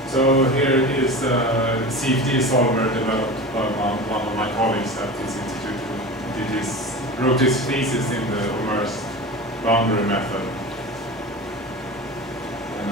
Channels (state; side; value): normal; both; correlation 0.31